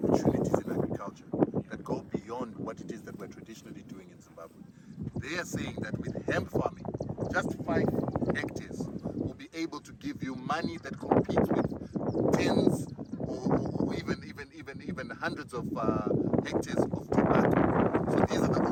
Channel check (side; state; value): both; identical; correlation 1.00